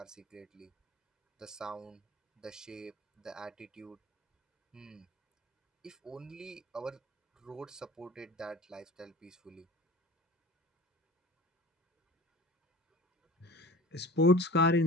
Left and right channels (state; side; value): normal; both; correlation 0.40